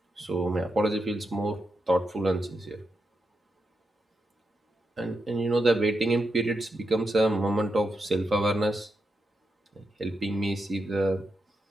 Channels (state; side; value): normal; both; correlation 0.85